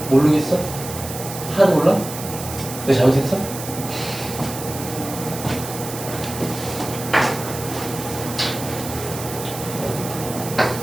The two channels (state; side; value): noise; right; hiss, 10 dB below the sound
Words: 모르겠어? 하나도 몰라? 내가 잘못했어?